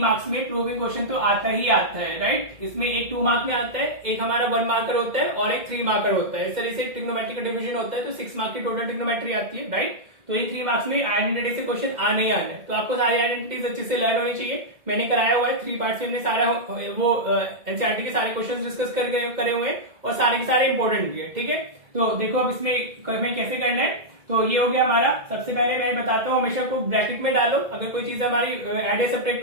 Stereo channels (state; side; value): late; left; 2.1 ms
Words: में प्रूविंग क्वेश्चन तो आता ही आता है, राइट। इसमें एक 2 मार्क में आता है, एक हमारा 1 मार्कर होता है और एक 3 मार्कर होता है। इस तरह से ट्रिग्नोमेट्री का डिवीजन होता है तो 6 मार्क की टोटल ट्रिग्नोमेट्री आती है, राइट। तो ये 3 मार्क्स में आइडेंटिटी से क्वेश्चन आने ही आने, तो आपको सारी आइडेंटिटीज अच्छे से लर्न होनी चाहिए। मैंने कराया हुआ है 3 पार्ट्स में, हमने सारा वो एनसीईआरटी के सारे क्वेश्चन डिस्कस करे हुए हैं और सारे के सारे इंपॉर्टेंट भी है, ठीक है। तो देखो अब इसमें कैसे करना है। तो ये हो गया हमारा। सबसे पहले मैं बताता हूँ, हमेशा को ब्रैकेट में डालो अगर कोई चीज हमारी एड या